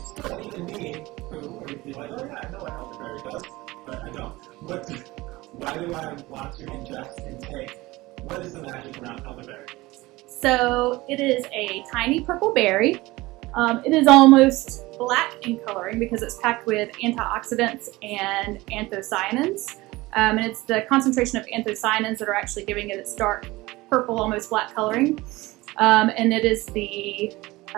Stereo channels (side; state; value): left; quieter; 20.1 dB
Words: still even me who would be like, oh yeah, I know what elderberry does, but I don't. Why do I want to ingest and take? What is the magic around elderberry? So it is a tiny purple berry. It is almost black in coloring because it's packed with antioxidants and anthocyanins. And it's the concentration of anthocyanins that are actually giving it its dark purple, almost black coloring. And it is the